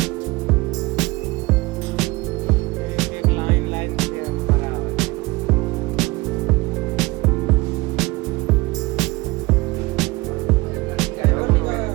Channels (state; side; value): quieter; left; 22.0 dB